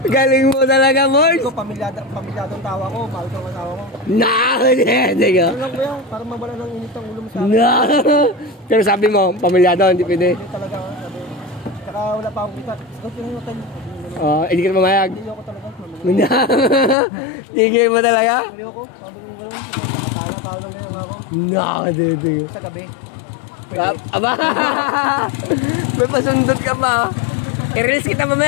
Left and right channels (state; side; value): drops out; right; at 16.9 s